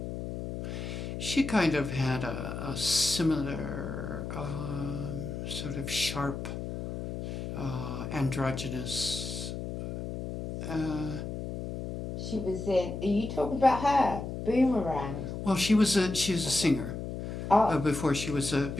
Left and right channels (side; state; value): left; noise; hum, 6 dB below the sound